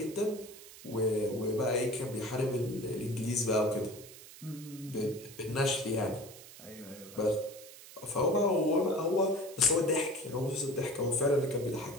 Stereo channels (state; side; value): noise; right; hiss, 17 dB below the sound